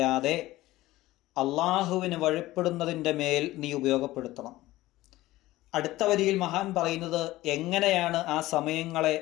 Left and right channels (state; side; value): quieter; right; 17.2 dB